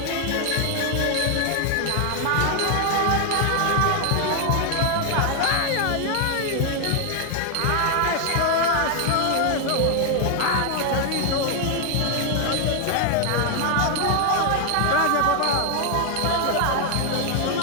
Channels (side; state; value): both; different; correlation 0.00